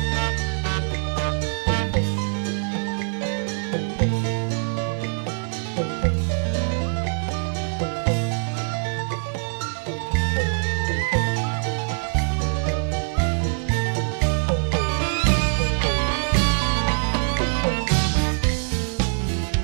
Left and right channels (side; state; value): left; silent; 63 dB below the other